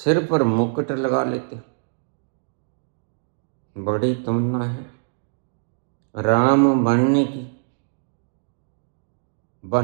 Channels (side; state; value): left; silent; digital silence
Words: पर मुकुट लगा लेते। बड़ी तमन्ना है राम बनने की,